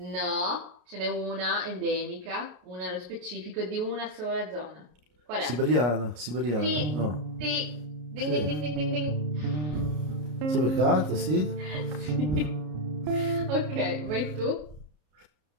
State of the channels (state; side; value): late; left; 33 ms